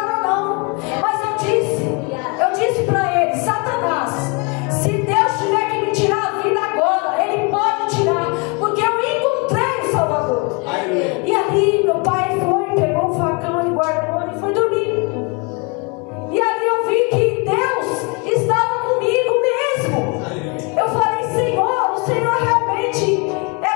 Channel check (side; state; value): right; quieter; 31.9 dB